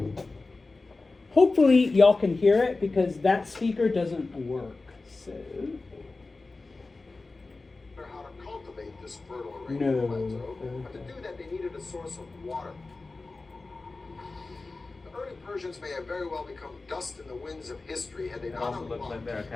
Hopefully y'all can hear it because that speaker doesn't work, so. How to cultivate this fertile Iranian plateau, but to do that they needed a source of water. The early Persians may have very well become dust in the winds of history had they not unlocked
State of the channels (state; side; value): quieter; right; 3.5 dB